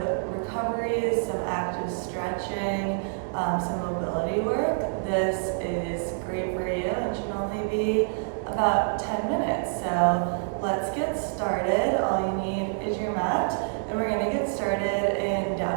recovery, some active stretching, some mobility work. This is great for you and should only be about 10 minutes. So let's get started. All you need is your mat, and we're gonna get started in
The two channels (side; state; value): left; silent; digital silence